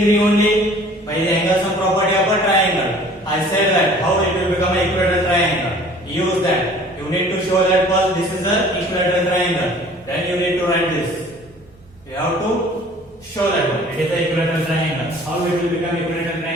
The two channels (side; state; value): both; normal; correlation 0.50